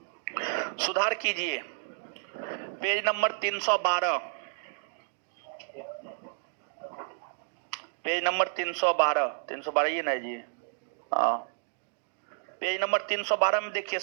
सुधार कीजिए, पेज नंबर 312। पेज नंबर 312 ये ना जी, हाँ पेज नंबर 312 में देखिए,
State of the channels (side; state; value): left; silent; digital silence